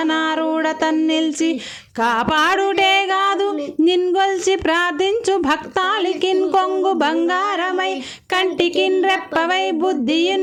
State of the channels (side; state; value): both; identical; correlation 1.00